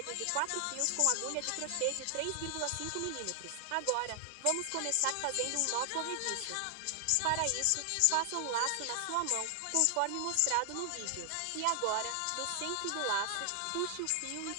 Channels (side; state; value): both; different; correlation 0.00